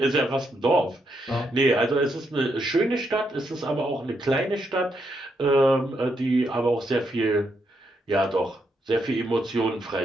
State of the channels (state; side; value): normal; both; correlation 0.79